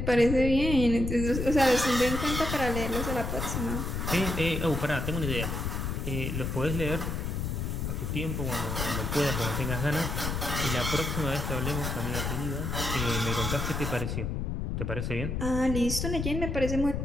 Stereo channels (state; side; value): noise; left; rumble, 2 dB below the sound